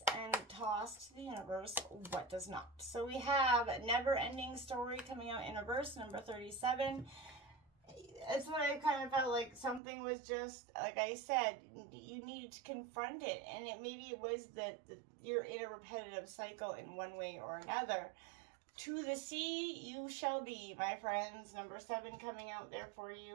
and toss to the universe what does not. So we have Never Ending Story coming out in reverse, number 37. It's what I kind of felt like something was just, like I said, you needed to confront it. And maybe it was that you're in a repetitive cycle in one way or another. To the sea you shall be, my friends. Number 7 coming out there for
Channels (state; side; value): drops out; left; at 9.8 s